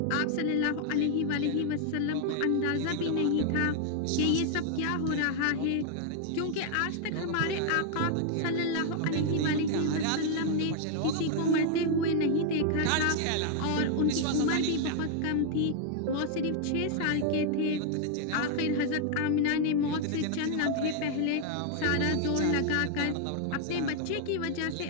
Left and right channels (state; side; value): different; both; correlation 0.00